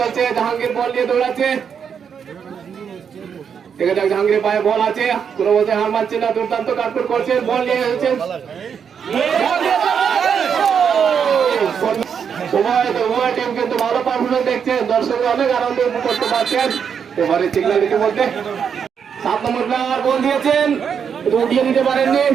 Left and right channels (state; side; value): quieter; left; 7.2 dB